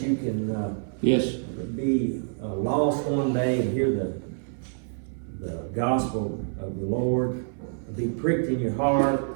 can be lost one day and hear the gospel of the Lord, be pricked in your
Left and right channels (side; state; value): left; silent; 58 dB below the other